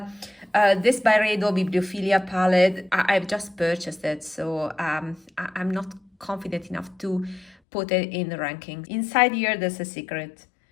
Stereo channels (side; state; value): right; drops out; at 7.6 s